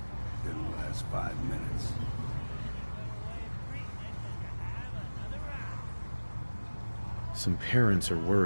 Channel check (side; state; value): both; inverted; correlation -1.00